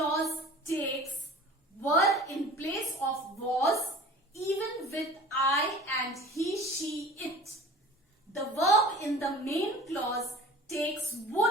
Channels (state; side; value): normal; both; correlation 0.41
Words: takes were in place of was, even with I and he, she, it. The verb in the main clause takes